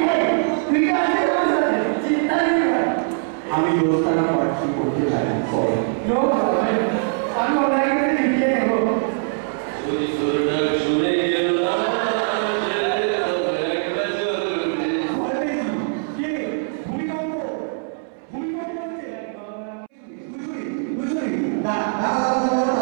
তুই কি আসতে পারছিস চিন্তা নেই ভাই আমি দোস্তানা পার্টি করতে চাই নো ভাই আমি অনলাইন করে লিখে নেব শুনে গেল না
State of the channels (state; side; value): silent; left; 64 dB below the other